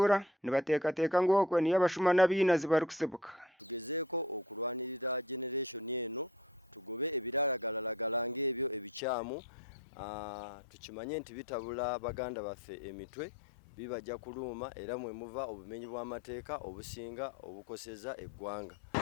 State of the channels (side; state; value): right; drops out; at 9.0 s